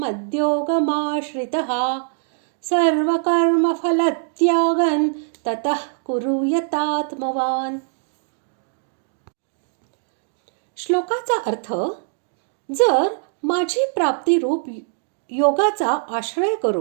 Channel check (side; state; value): left; silent; digital silence